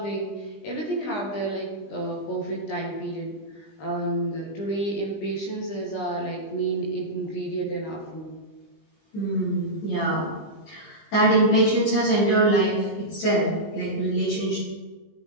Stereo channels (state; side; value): late; right; 20 ms